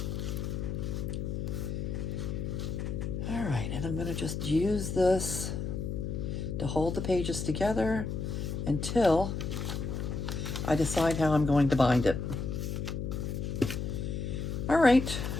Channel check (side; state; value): left; noise; hum, 3 dB below the sound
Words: All right, and I'm going to just use this to hold the pages together until I decide how I'm going to bind it. All right,